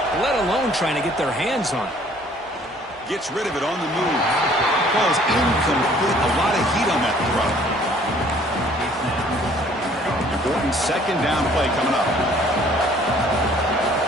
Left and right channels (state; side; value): normal; both; correlation 0.57